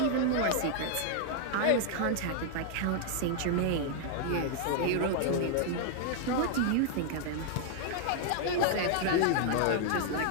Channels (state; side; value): different; both; correlation 0.00